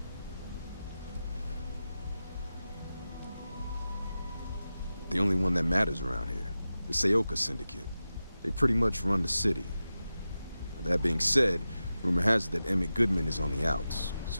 The only one that matters around here, the Seoka Syndicate. They pretty much run the city. That being said, rumor has it that Emmett Goodman is on the outs,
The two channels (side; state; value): both; inverted; correlation -0.93